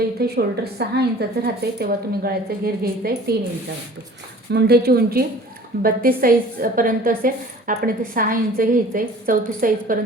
इथे शोल्डर 6 इंचाचं राहतं आहे तेव्हा तुम्ही गळ्याचं घेर घ्यायचं आहे 3 इंचावरती. मुंढ्याची उंची 32 साईजपर्यंत असेल, आपण इथे 6 इंच घ्यायचं आहे. 34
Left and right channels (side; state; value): both; normal; correlation 0.47